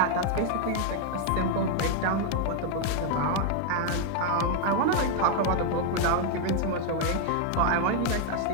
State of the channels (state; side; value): different; both; correlation 0.00